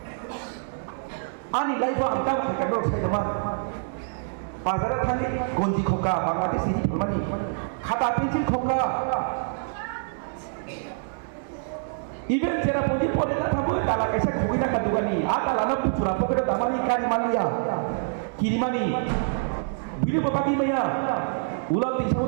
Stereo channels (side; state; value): left; silent; digital silence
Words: ani laifa angka kakak saya teman bazar tadi gonji khoka Bangladesh ini pemani khata pencil khoka even jera puji pore ta thabu tala kaisa khogina ka dugani ata lana puchura pokeda damani kan mania kirimani bili bokati maya ulang di